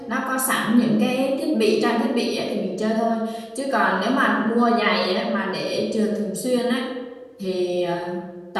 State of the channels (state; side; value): identical; both; correlation 1.00